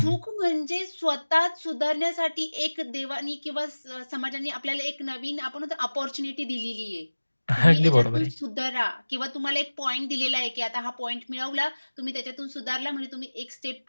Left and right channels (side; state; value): both; inverted; correlation -1.00